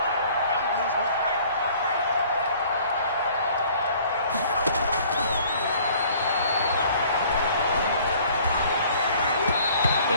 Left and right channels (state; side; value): inverted; both; correlation -0.54